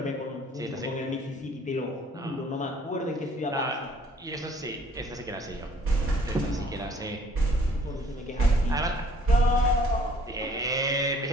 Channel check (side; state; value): both; normal; correlation 0.58